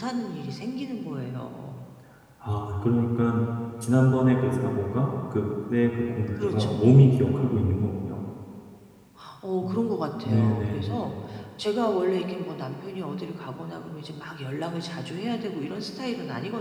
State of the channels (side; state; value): both; identical; correlation 1.00